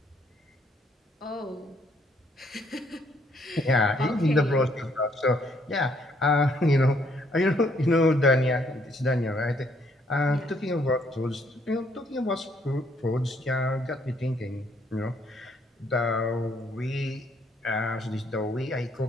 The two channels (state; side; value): normal; both; correlation 0.68